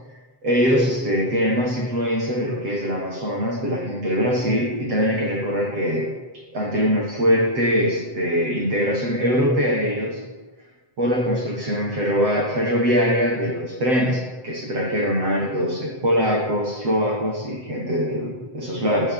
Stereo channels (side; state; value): left; late; 7.8 ms